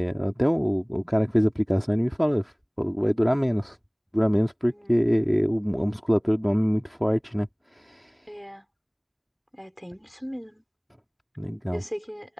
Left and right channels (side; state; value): both; identical; correlation 1.00